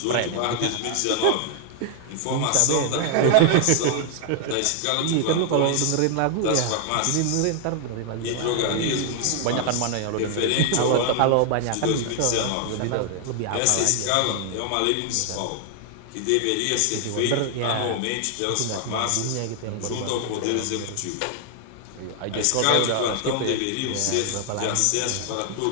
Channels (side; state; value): both; different; correlation 0.00